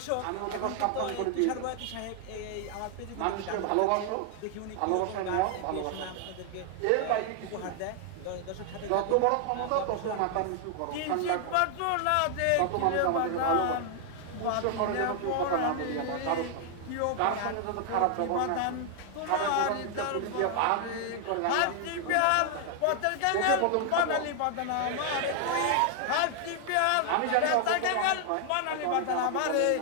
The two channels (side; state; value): both; different; correlation 0.00